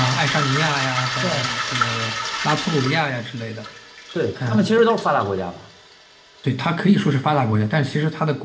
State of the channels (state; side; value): identical; both; correlation 1.00